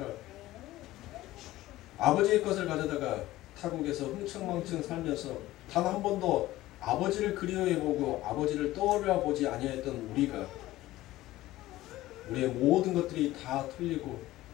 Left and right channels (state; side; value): quieter; right; 16.4 dB